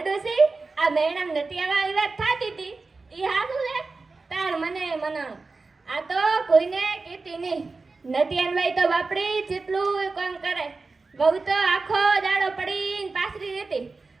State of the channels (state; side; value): quieter; left; 3.9 dB